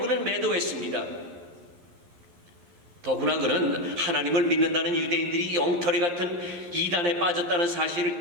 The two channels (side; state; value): left; late; 11 ms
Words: 매도했습니다. 더구나 그는 하나님을 믿는다는 유대인들이 엉터리 같은 이단에 빠졌다는